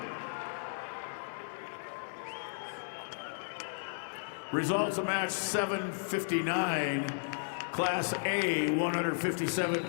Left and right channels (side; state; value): right; silent; digital silence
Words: Results of match 759, Class A,